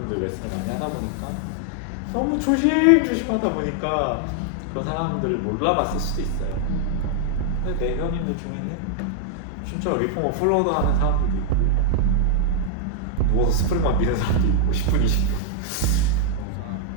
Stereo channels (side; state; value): both; different; correlation 0.00